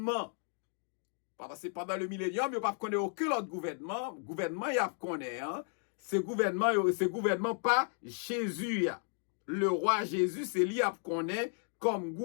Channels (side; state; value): right; silent; 55 dB below the other